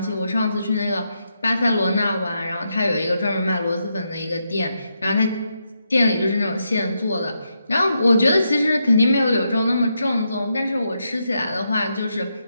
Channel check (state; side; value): inverted; both; correlation -0.82